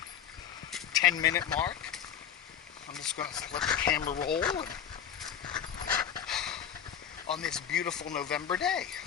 10-minute mark. I'm just going to let the camera roll on this beautiful November day.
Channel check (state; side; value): quieter; right; 9.0 dB